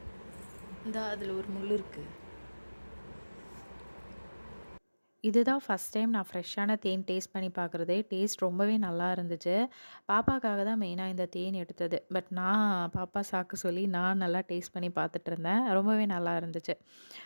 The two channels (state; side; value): inverted; both; correlation -1.00